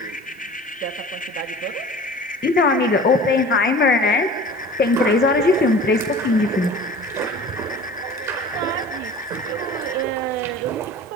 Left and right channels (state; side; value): normal; both; correlation 0.41